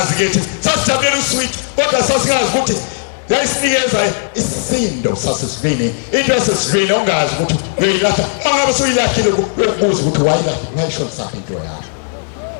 kethi sasijabulela uswidi kodwa sasingazi ukuthi yayisinikeza isindo sasesivini into yasesivini ongazi ukuthi uyilahla mangabe suyilahlile ukubuza ukuthi wayishona saphi into yakho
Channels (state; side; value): silent; right; digital silence